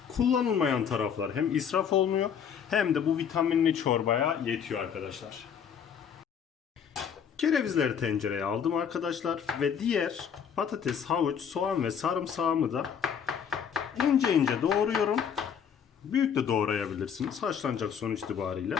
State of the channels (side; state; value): right; quieter; 7.7 dB